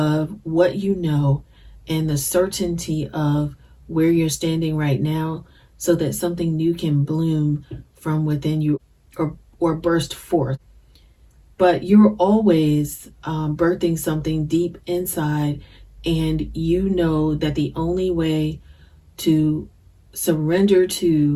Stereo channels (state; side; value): identical; both; correlation 1.00